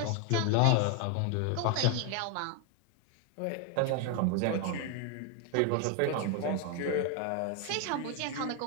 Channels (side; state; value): both; different; correlation 0.01